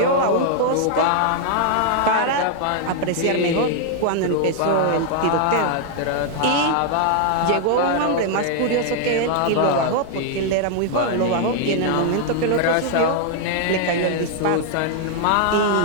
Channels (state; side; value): different; both; correlation 0.00